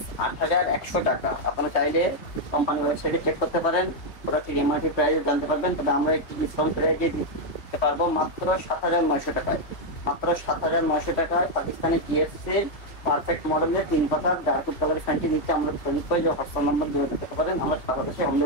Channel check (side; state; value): right; late; 3.1 ms